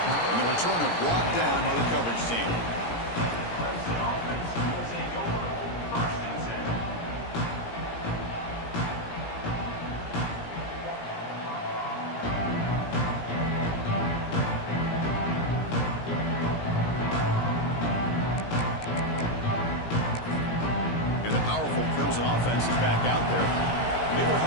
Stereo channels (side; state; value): right; late; 17 ms